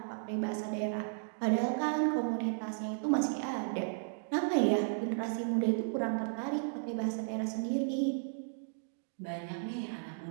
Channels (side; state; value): left; silent; digital silence